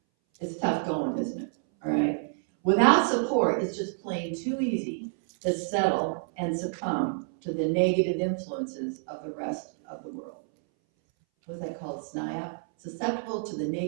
it's tough going, isn't it? All right. Without support, it's just plain too easy to settle and succumb to the negative influences of the rest of the world. What's that called? SNIOP? Susceptible to the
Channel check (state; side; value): silent; left; 59 dB below the other